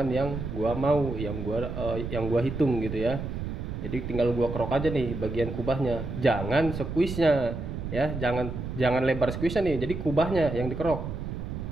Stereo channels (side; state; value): right; noise; rumble, 6 dB below the sound